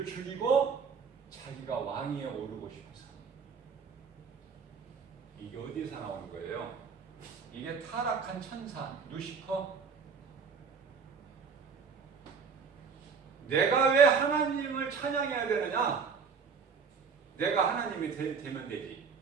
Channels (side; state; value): left; quieter; 5.7 dB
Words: 죽이고 자기가 왕위에 오르고 싶어서. 이게 어디서 나오는 거예요? 이게 타락한 천사 루시퍼. 내가 왜 하나님을 찬양해야 되느냐? 내가 하나님이 되면 되지.